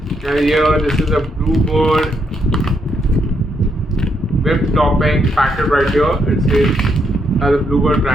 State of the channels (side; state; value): both; normal; correlation 0.77